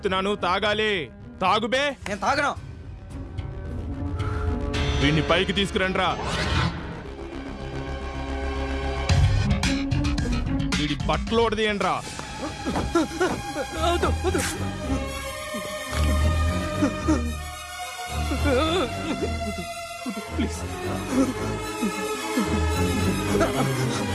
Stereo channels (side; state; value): both; identical; correlation 1.00